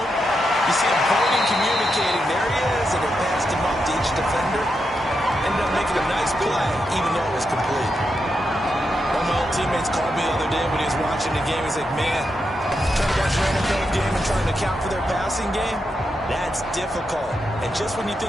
you see him holding, communicating. There he is, and they passed him up to each defender. Ended up making a nice play, even though it was complete. One of my old teammates called me the other day when he was watching the game. He's like, man, trying to watch an NFL game and trying to account for their passing game, that's difficult. And just when you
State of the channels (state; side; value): normal; both; correlation 0.85